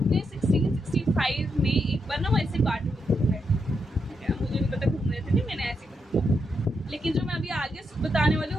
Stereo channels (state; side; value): normal; both; correlation 0.82